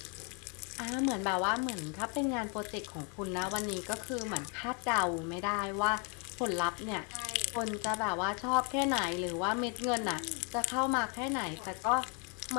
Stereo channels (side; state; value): right; quieter; 35.9 dB